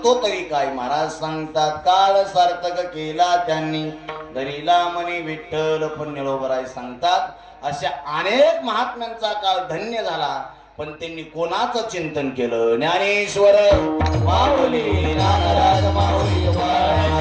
तरी काय. महाराज सांगतात काळ सार्थक केला त्यांनी धरिला मनी विठ्ठल. पण निळोबराय सांगतात अशा अनेक महात्म्यांचा काळ धन्य झाला पण त्यांनी कोणाचं चिंतन केलं. ज्ञानेश्वर माऊली ज्ञानराज माऊली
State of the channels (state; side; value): identical; both; correlation 1.00